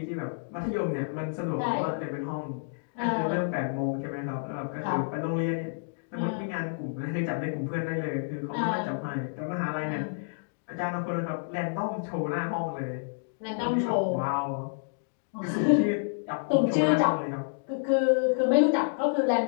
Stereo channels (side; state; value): right; silent; digital silence